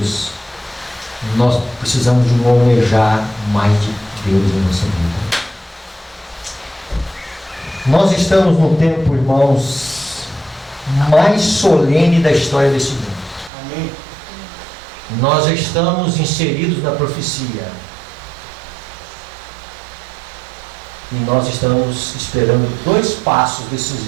Nós precisamos de um almejar mais de Deus em nossa vida. Nós estamos no tempo, irmãos, mais solene da história desse mundo. Amém. nós já estamos inseridos na profecia. E nós estamos esperando 2 passos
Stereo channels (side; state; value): left; drops out; at 13.5 s